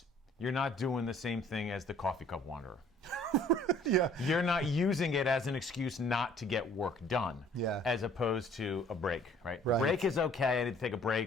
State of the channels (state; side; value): normal; both; correlation 0.55